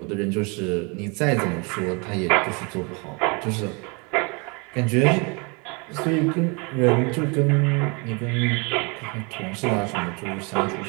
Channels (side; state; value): left; quieter; 31.4 dB